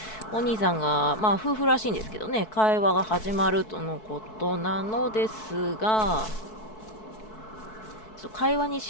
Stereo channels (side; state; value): right; late; 4.6 ms